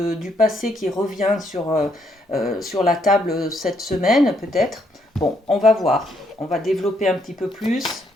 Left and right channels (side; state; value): both; normal; correlation 0.73